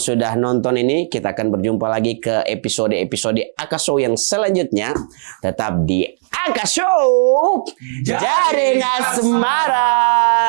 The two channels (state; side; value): silent; left; digital silence